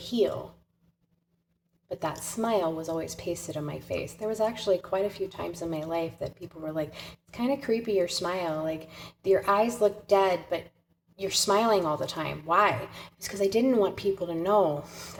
But that smile was always pasted on my face. There was actually quite a few times in my life that people were like, it's kind of creepy, your smile. Like, your eyes look dead, but you're smiling all the time. Why? It's because I didn't want people to know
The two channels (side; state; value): both; identical; correlation 1.00